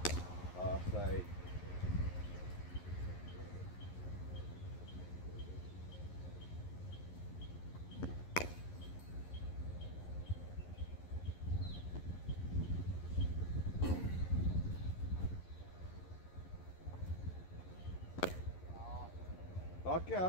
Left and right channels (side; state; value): right; late; 11 ms